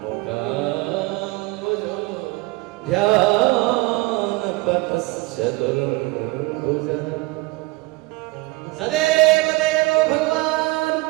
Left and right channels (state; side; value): quieter; left; 22.3 dB